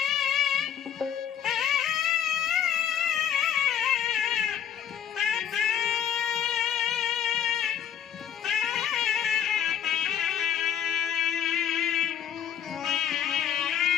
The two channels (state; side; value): quieter; right; 9.6 dB